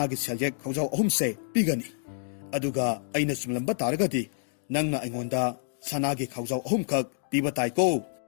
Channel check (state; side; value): silent; right; digital silence